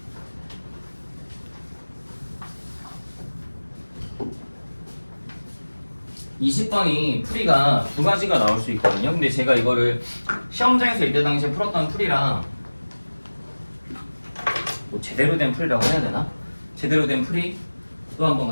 이십 번이 풀이가 두 가지가 나올 수 있거든요. 근데 제가 이거를 시험장에서 이때 당시에 풀었던 풀이랑 뭐 제대로 된 풀이라고 해야 되나? 제대로 된 풀이 또 한번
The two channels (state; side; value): inverted; both; correlation -1.00